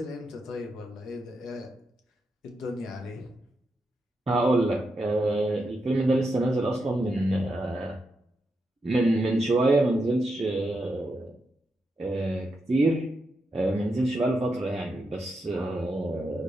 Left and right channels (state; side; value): normal; both; correlation 0.85